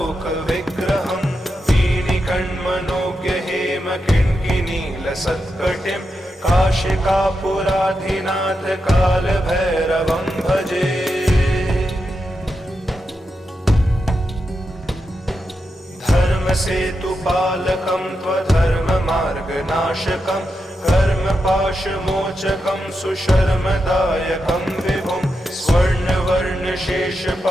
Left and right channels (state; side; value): normal; both; correlation 0.87